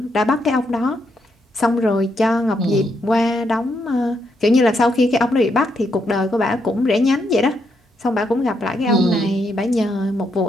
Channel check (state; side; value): normal; both; correlation 0.78